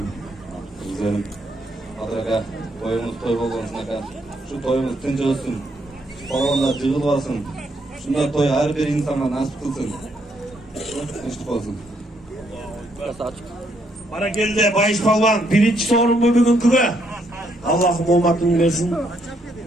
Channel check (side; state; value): both; normal; correlation 0.73